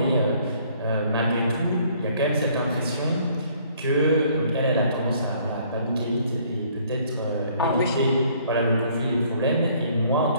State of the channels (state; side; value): inverted; both; correlation -0.61